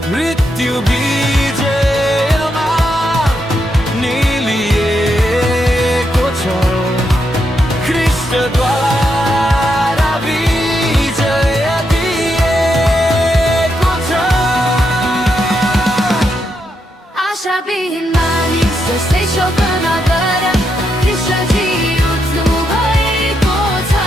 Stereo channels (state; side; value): normal; both; correlation 0.81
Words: मृत्यु विजयमा निलिएको छ, ख्रीष्टद्वारा विजय दिएको छ। आशाविहीन मानिस जस्तै शोक नगर, कृष्णजी उठ्नु भएको छ।